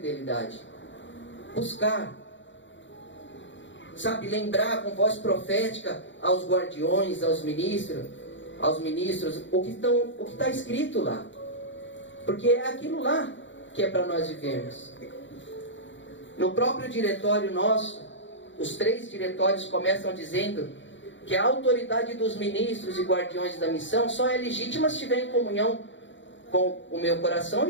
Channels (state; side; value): late; right; 0.54 ms